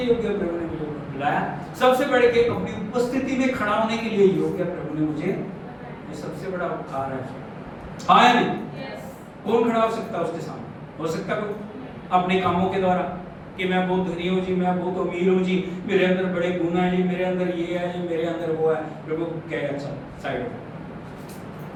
योग्य प्रभु ने मुझे बुलाया। सबसे बढ़ के अपनी उपस्थिति में खड़ा होने के लिए योग्य प्रभु ने मुझे, ये सबसे बड़ा उपकार है। हाँ या नहीं? कौन खड़ा हो सकता है उसके सामने? हो सकता है अपने कामों के द्वारा कि मैं बहुत धनी हूँ जी, मैं बहुत अमीर हूँ जी, मेरे अंदर बड़े गुण हैं जी, मेरे अंदर ये है जी, मेरे अंदर वो है। प्रभु कहे अच्छा साइड में,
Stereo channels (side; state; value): both; identical; correlation 1.00